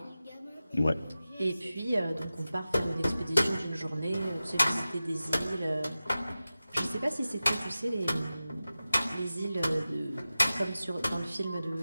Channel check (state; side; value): inverted; both; correlation -0.95